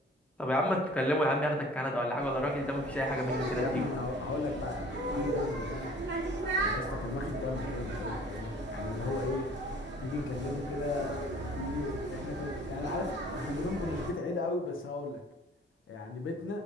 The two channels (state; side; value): normal; both; correlation 0.51